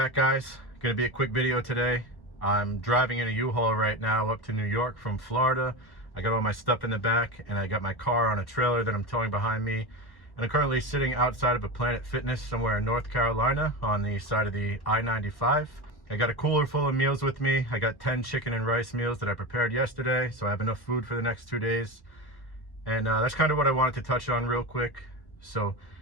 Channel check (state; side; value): late; right; 1.1 ms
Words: guys. Gonna be a quick video today. I'm driving in a U-Haul right now up to New York from Florida. I got all my stuff in the back and I got my car on a trailer that I'm towing behind me. And I'm currently sitting outside of a Planet Fitness somewhere in North Carolina on the side of the I-95. I got a cooler full of meals with me. I got 10 chicken and rice meals that I prepared yesterday, so I have enough food for the next 2 days. And that's kind of what I wanted to touch on real quick. So